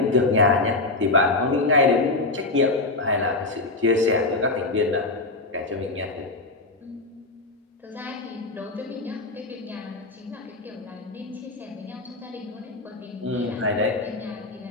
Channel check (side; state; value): right; quieter; 3.1 dB